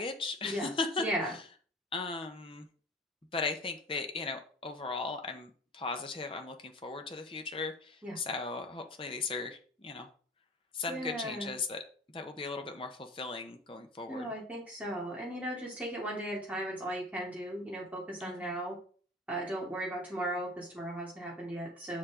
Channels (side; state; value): both; normal; correlation 0.39